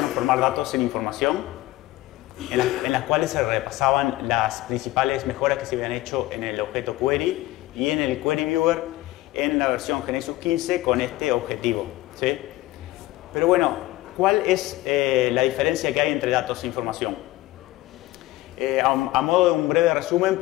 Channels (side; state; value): right; quieter; 17.6 dB